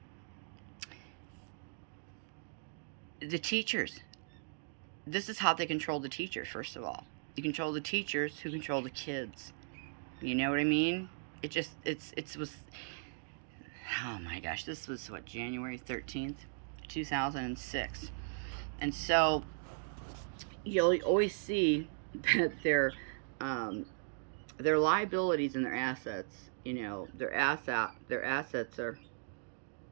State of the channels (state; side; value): silent; left; digital silence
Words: the teachers, this is how they control the teachers. First of all, you control the teachers who control the kids. You know what I mean? It was, oh my gosh, this was what, January 13th, 2006. And so you'll always see that their liabilities and their assets, their assets are